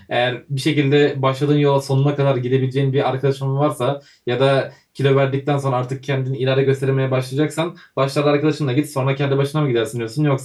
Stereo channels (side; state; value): both; identical; correlation 1.00